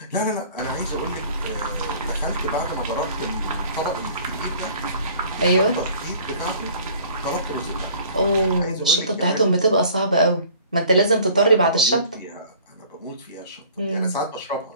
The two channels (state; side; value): inverted; both; correlation -0.51